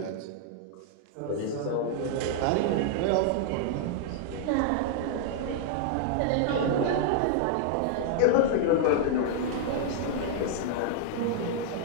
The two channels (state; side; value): different; both; correlation -0.01